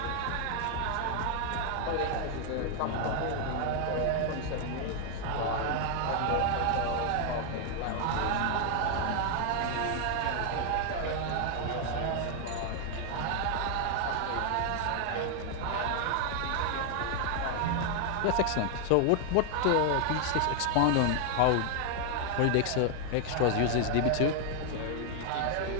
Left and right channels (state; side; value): different; both; correlation 0.00